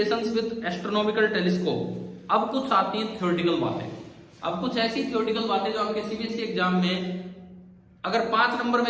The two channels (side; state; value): both; identical; correlation 1.00